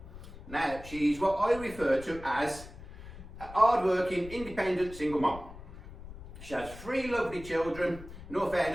Now, she's what I refer to as a hard-working, independent single mom. She has 3 lovely children. In all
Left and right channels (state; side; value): noise; left; rumble, 14 dB below the sound